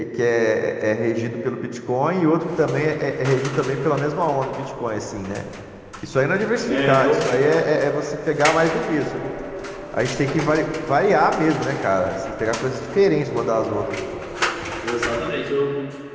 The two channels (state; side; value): identical; both; correlation 1.00